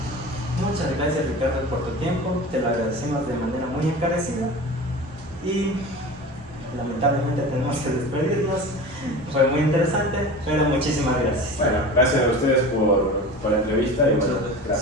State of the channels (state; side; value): normal; both; correlation 0.34